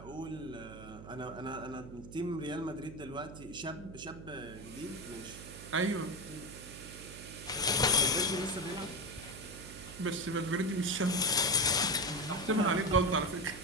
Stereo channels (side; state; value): right; noise; hum, 14 dB below the sound